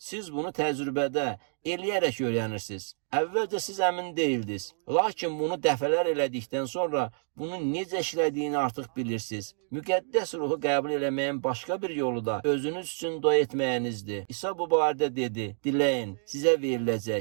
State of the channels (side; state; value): left; silent; digital silence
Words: bunu təcrübədə eləyərək öyrənirsiniz. Əvvəlcə siz əmin deyildiniz. Lakin bunu dəfələr elədikdən sonra bunun necə işlədiyini artıq bilirsiniz. Müqəddəs ruhu qəbul eləməyin başqa bir yolu da özünüz üçün dua etməyinizdir. İsa bu barədə dedi, diləyin, sizə